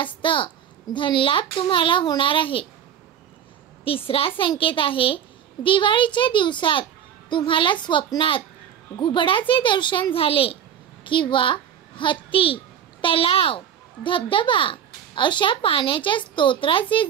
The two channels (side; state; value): left; quieter; 9.2 dB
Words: धनलाभ तुम्हाला होणार आहे। तिसरा संकेत आहे दिवाळीच्या दिवसात तुम्हाला स्वप्नात घुबडाचे दर्शन झाले किंवा हत्ती, तलाव, धबधबा अशा पाण्याच्या स्तोत्राचे